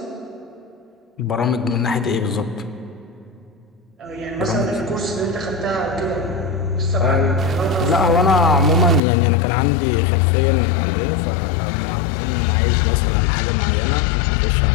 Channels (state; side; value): drops out; right; at 9.0 s